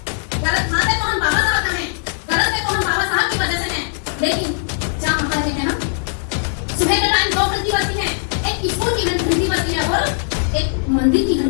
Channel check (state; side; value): silent; right; 66 dB below the other